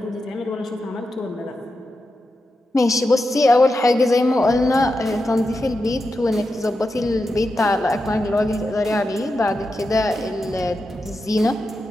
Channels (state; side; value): normal; both; correlation 0.89